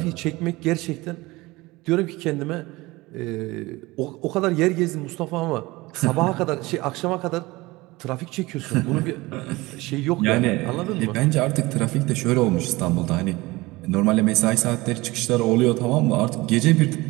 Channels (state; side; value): quieter; left; 21.1 dB